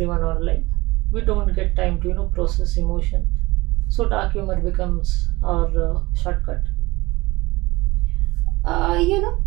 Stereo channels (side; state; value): left; quieter; 21.3 dB